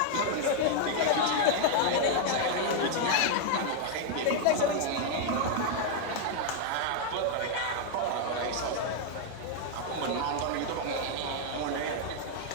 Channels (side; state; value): both; different; correlation 0.00